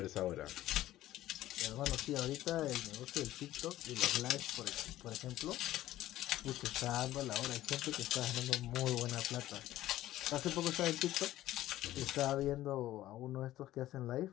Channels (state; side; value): quieter; right; 14.7 dB